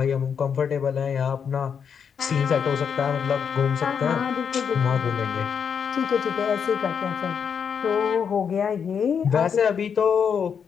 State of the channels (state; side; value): quieter; right; 7.0 dB